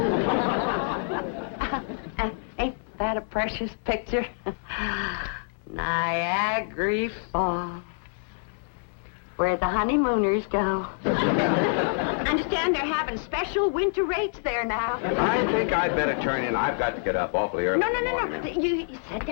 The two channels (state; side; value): silent; right; digital silence